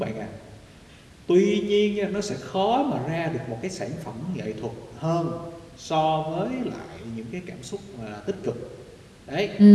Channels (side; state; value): both; identical; correlation 1.00